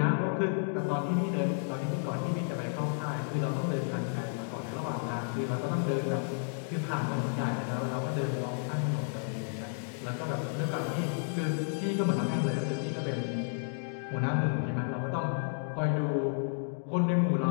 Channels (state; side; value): silent; right; digital silence